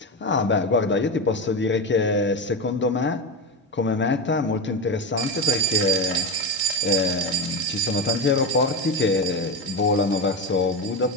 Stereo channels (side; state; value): both; normal; correlation 0.17